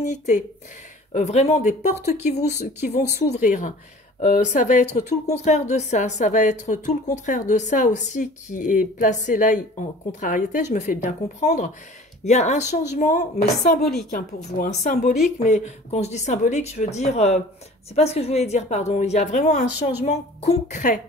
vraiment des portes qui vont s'ouvrir. Ça va être tout le contraire de ça, ça va être tout le contraire de ça aussi qui est placé là en contrariété, je me fais bien comprendre. Il y a un changement, mais symbolique, hein, pour vous, hein, symbolique, mais quand je dis symbolique, je veux dire, c'est pas ce que je voulais dire, pardon, il y a vraiment un changement concret.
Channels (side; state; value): both; normal; correlation 0.46